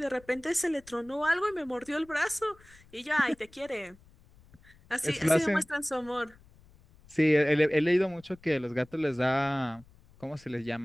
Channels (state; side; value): noise; left; rumble, 26 dB below the sound